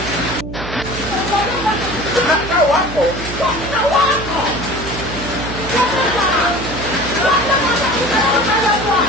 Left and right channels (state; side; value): noise; right; hum, 10 dB below the sound